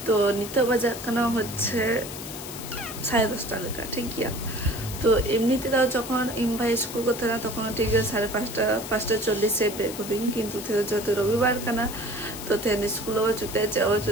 तो नितो बजा कना হচ্ছে 10:30 लेका ठीक गया तो एमनिते दाও যখন ইমভাই স্কুল করতে না তখন ঠিক 5:40 বের করি কিন্তু যত রবিবার কানা তো তেন স্কুল চুতে যাও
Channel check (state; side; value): noise; left; hiss, 10 dB below the sound